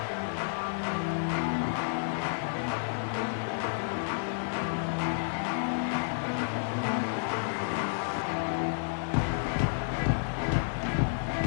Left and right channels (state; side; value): silent; right; digital silence